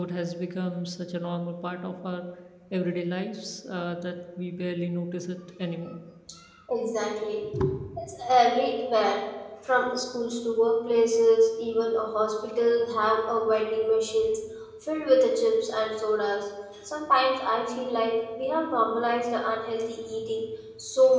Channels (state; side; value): identical; both; correlation 1.00